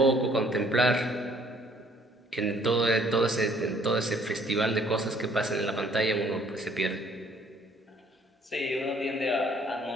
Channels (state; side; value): normal; both; correlation 0.61